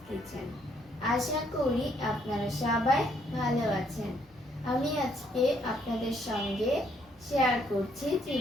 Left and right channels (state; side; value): normal; both; correlation 0.69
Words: Kitchen. আশা করি আপনারা সবাই ভালো আছেন। আমি আজকে আপনাদের সঙ্গে শেয়ার করছি